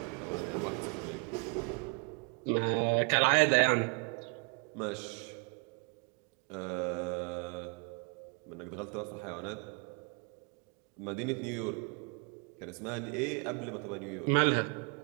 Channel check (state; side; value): quieter; left; 35.3 dB